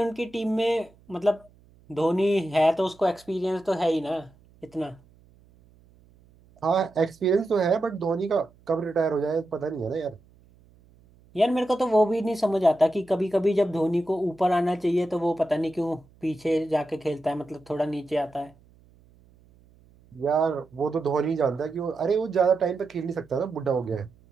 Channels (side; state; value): right; noise; hum, 29 dB below the sound